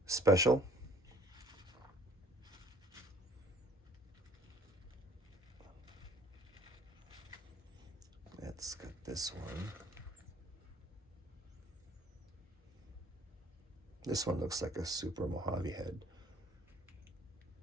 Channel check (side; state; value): both; normal; correlation 0.56